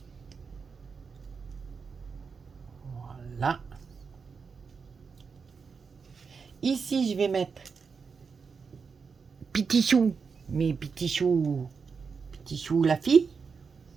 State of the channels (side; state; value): left; quieter; 5.5 dB